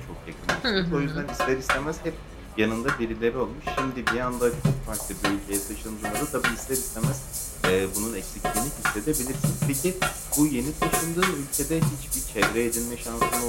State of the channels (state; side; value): identical; both; correlation 1.00